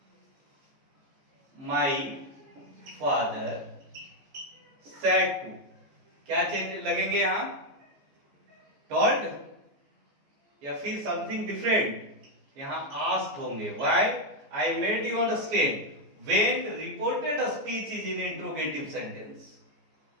माई फादर सेड टू, क्या चेंज लगेंगे यहां? टोल्ड या फिर समथिंग डिफरेंट? यहां आस्क्ड होंगे। Why? I made you understand when reported speech is in interrogative sentence.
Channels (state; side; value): late; left; 14 ms